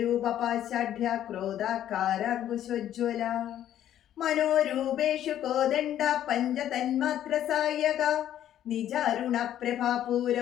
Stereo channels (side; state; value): right; quieter; 11.4 dB